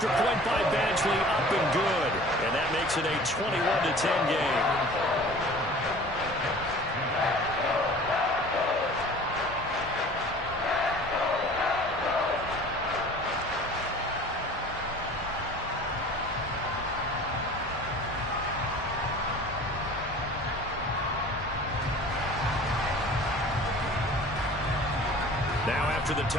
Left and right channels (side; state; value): both; normal; correlation 0.44